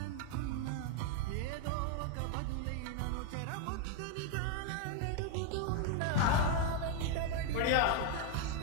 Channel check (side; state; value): both; different; correlation 0.01